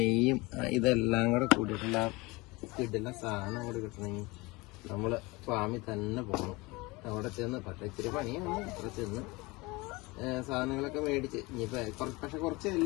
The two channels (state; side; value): quieter; right; 23.7 dB